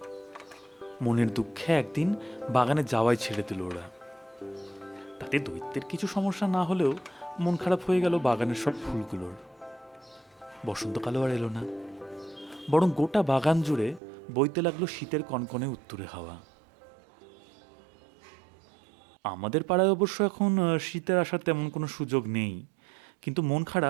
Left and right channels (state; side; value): drops out; left; at 14.0 s